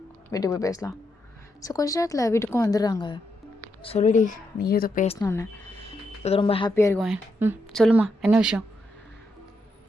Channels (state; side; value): normal; both; correlation 0.81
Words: வீட்டுக்கு போய் பேசலாம். ஸோ கொஞ்ச நேரத்தில் வீட்டுக்கும் வந்துடுறாங்க. சொல்லுடி நீ ஏதோ பேசணுன்னு, இது ரொம்ப ஹாப்பியாக இருக்கும். சொல்லுமா என்ன விஷயம்?